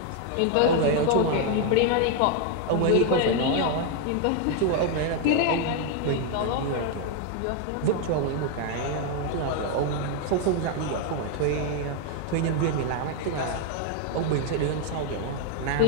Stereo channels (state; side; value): different; both; correlation 0.00